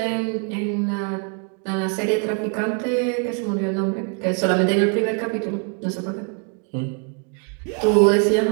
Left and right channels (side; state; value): left; quieter; 37.6 dB